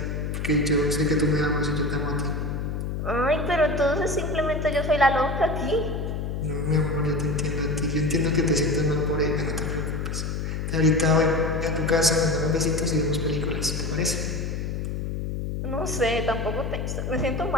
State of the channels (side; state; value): left; noise; hum, 3 dB below the sound